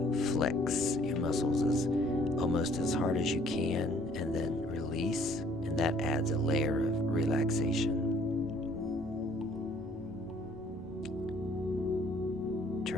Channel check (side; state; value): both; normal; correlation 0.60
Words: flex your muscles almost as hard as you can and then release, and that adds a layer of relaxation.